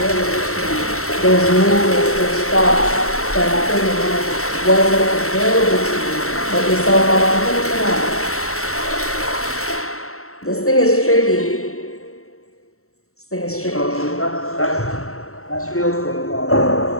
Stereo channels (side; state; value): right; late; 0.63 ms